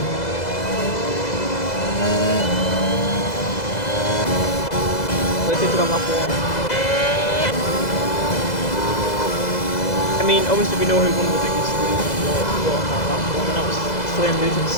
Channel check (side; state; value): right; late; 2.0 ms